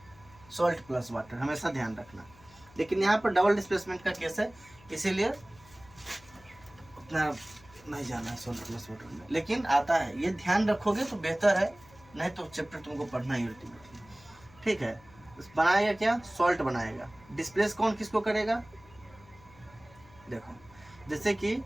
सॉल्ट प्लस वाटर, हमेशा ध्यान रखना। लेकिन यहाँ पर डबल डिस्प्लेसमेंट का केस है, इसीलिए उतना नहीं जाना है सॉल्ट प्लस वाटर में, लेकिन आता है, ये ध्यान रखोगे तो बेहतर है, नहीं तो चैप्टर तुमको पढ़ना ही अल्टीमेटली। ठीक है, बनाएगा क्या, सॉल्ट बनाएगा। डिस्प्लेस कौन किसको करेगा, देखो जैसे कि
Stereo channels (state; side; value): noise; left; hum, 24 dB below the sound